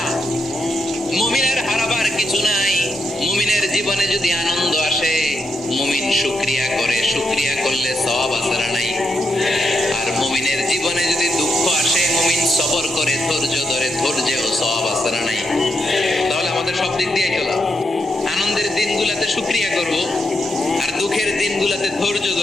মুমিনের হারাবার কিছু নাই। মুমিনের জীবনে যদি আনন্দ আসে, মুমিন শুকরিয়া করে, শুকরিয়া করলে সওয়াব আছে না নাই? আর মুমিনের জীবনে যদি দুঃখ আসে, মুমিন সবর করে, ধৈর্য ধরে, ধৈর্যেও সওয়াব আছে না নাই? তাহলে আমাদের সব দিক দিয়ে চলা, আনন্দের দিনগুলোতে শুকরিয়া করব, আর দুঃখের দিনগুলোতে ধৈর্য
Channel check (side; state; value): both; normal; correlation 0.82